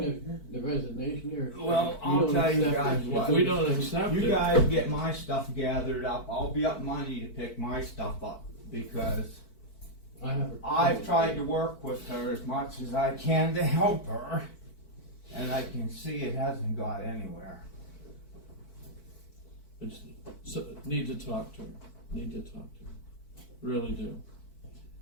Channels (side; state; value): right; late; 4.5 ms